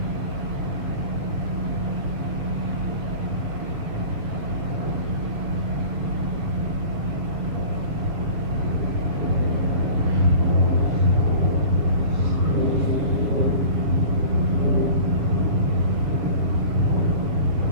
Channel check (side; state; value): left; late; 7.1 ms